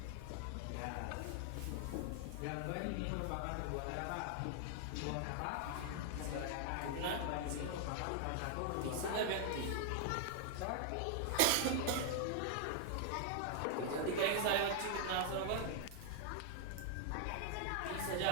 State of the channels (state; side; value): different; both; correlation 0.00